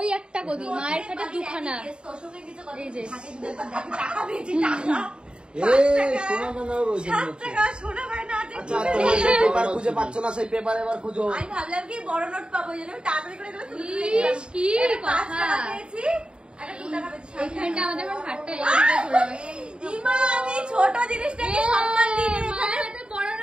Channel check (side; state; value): left; late; 0.051 ms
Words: একটা গদি, মায়ের খাটে দুখানা। এই যে পেপার খুঁজে পাচ্ছ না, সেই পেপার এবার খুঁজো। আমি ভাবলাম কি বড় নোট পাবো, তাড়াতাড়ি করে কি কথা। এইখানটা আমাদের খাটটা আমি ছোট জিনিসটাকে সম্মান দিই, বড়